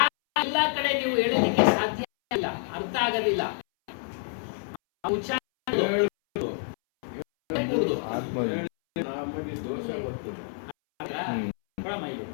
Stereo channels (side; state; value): right; silent; 60 dB below the other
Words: ಎಲ್ಲ ಕಡೆ ನೀವು ಹೇಳಲಿಕ್ಕೆ ಸಾಧ್ಯ ಇಲ್ಲ, ಅರ್ಥ ಆಗೋದಿಲ್ಲ.